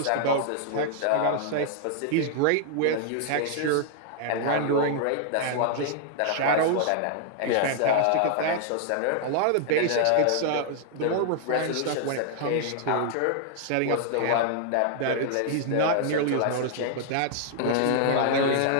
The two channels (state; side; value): different; both; correlation 0.00